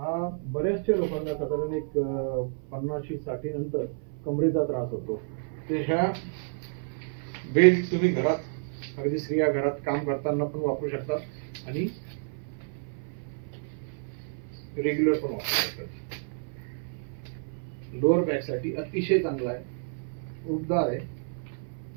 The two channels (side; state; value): left; silent; 55 dB below the other